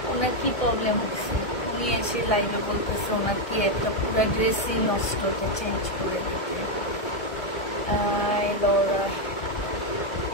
ওনার কি প্রবলেম হচ্ছে, উনি এসে লাইভে বলতেছে ওনার কি একটা পুরো ড্রেসই নষ্ট, তো চেঞ্জ করে দিতে।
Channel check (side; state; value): right; late; 1.7 ms